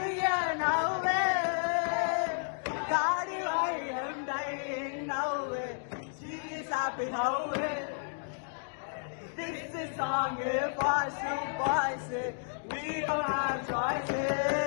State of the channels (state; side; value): silent; right; digital silence